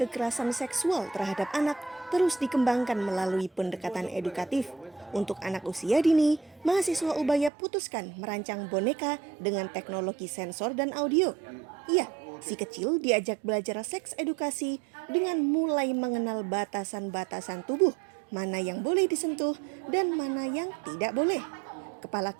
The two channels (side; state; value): left; drops out; at 7.5 s